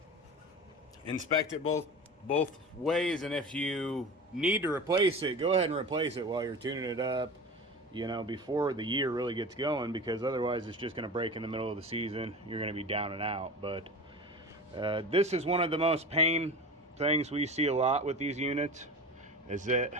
inspect it both ways, and if you need to replace it, go ahead and replace it while you're tuning it up, you know, before the year really gets going, because otherwise it's just going to break in the middle of the season. You're going to be down and out. But this is one of the most pain things we see a lot with these units, is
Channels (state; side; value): normal; both; correlation 0.32